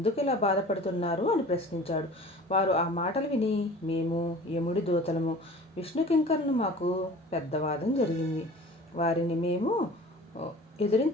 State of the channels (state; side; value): normal; both; correlation 0.43